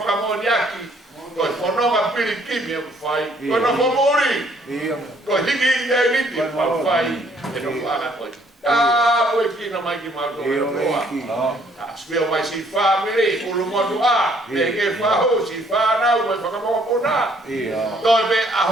moniaki. Coi fonoma pirikimi o fai, coi non può morire, coi higi e liti ma fai, e non fa coi. Ah, poi chi non mai chiamato no. Spero mai si fa mire, un modo a, perché fa si fa na, poi fa come pona. Dove a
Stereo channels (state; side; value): normal; both; correlation 0.64